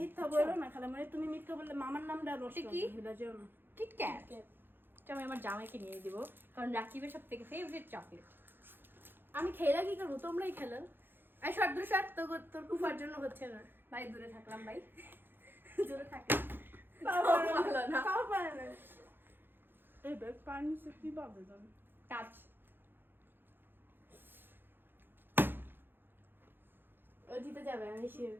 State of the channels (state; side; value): late; left; 0.099 ms